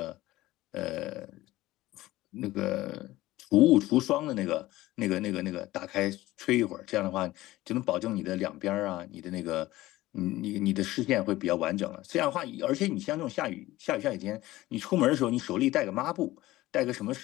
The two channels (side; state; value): right; quieter; 17.2 dB